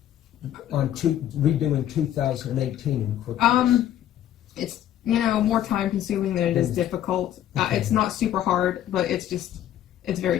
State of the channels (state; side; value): quieter; right; 11.6 dB